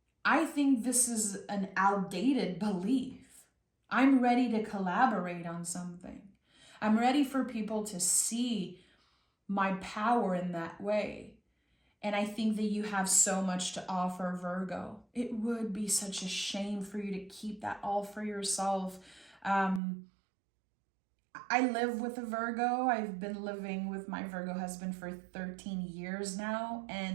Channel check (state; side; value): drops out; left; at 19.8 s